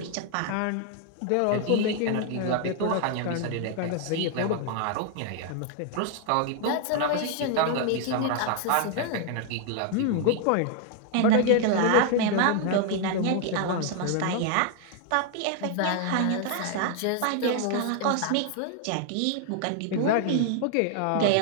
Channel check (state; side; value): different; both; correlation 0.00